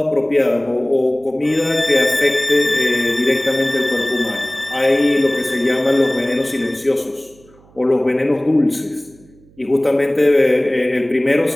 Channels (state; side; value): noise; right; hum, 28 dB below the sound